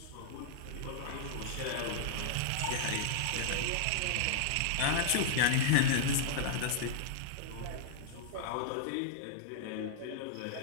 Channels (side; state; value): both; different; correlation -0.01